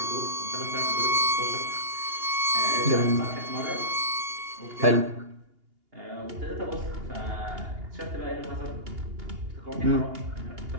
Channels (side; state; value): left; late; 2.8 ms